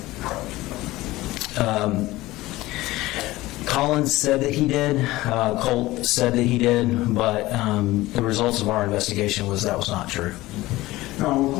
gun? Colin said that he did. Colt said that he did, but the results of our investigation was that was not true. Now, when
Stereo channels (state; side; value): quieter; right; 18.2 dB